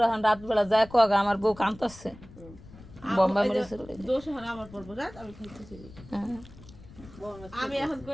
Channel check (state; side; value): noise; left; rumble, 19 dB below the sound